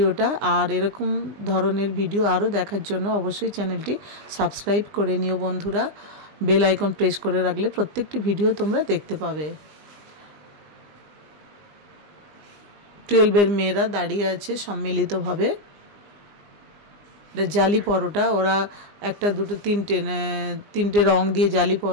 আর এরকম ধরনের ভিডিও আরও দেখার জন্য অবশ্যই চ্যানেলটি সাবস্ক্রাইব করে নিও বন্ধুরা। বেল আইকন প্রেস করে রাখলে প্রত্যেকটি ভিডিও তোমরা দেখতে পাবে। 12 এর মেয়েরা দাঁড়িয়ে আছে সম্মিলিতভাবে। জালি পরোটা, ওরা 1, 2, 3টে রং দিয়ে জালি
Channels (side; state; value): left; late; 20 ms